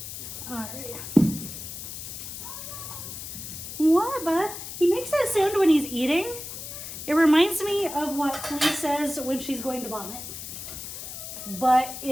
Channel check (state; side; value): noise; left; hiss, 9 dB below the sound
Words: All right. What, bud? He makes that sound when he's eating. It reminds me of what Flea says when she's going to vomit. But